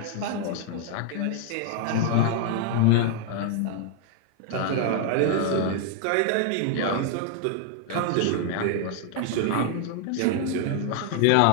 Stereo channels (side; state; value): both; different; correlation 0.00